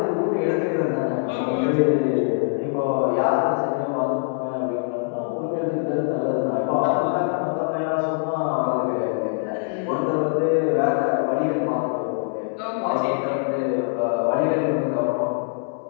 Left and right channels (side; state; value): right; silent; 63 dB below the other